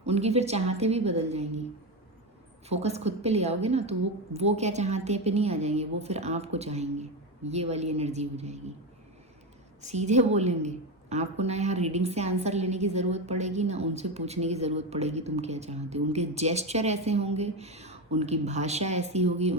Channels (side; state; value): both; normal; correlation 0.15